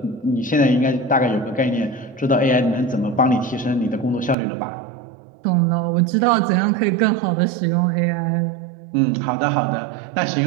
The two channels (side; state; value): left; drops out; at 4.4 s